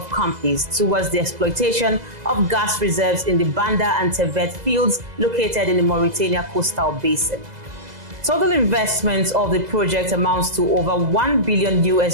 companies towards the exploitation of gas reserves in the Banda and Tevet fields located in the Mauritania coastal basin. Total investment of the project amounts to over $1 billion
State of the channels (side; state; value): left; late; 2.0 ms